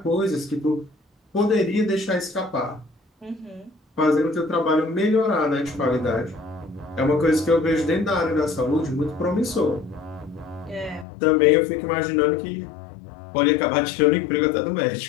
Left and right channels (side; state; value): right; drops out; at 11.1 s